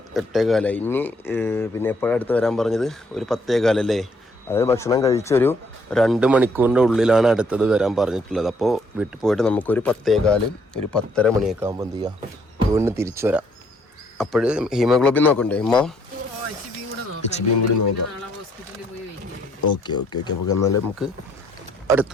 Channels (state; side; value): normal; both; correlation 0.67